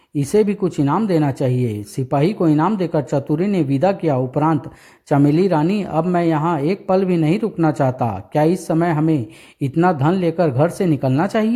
इसे भी कुछ इनाम देना चाहिए। सिपाही को इनाम देकर चतुरी ने विदा किया। उपरांत, चमेली रानी, अब मैं यहाँ एक पल भी नहीं रुकना चाहता। क्या इस समय हमें इतना धन लेकर घर से निकलना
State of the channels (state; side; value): identical; both; correlation 1.00